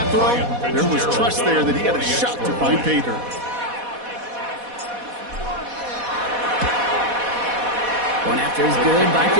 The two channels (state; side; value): late; left; 4.1 ms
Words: throw, there was trust there that he had a shot to find pay dirt. Going after is good by